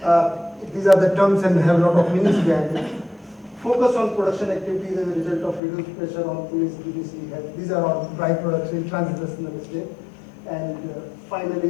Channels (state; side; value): drops out; right; at 5.6 s